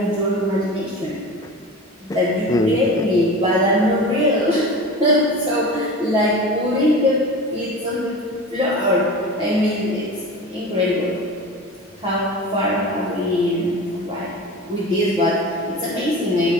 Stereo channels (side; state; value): both; normal; correlation 0.33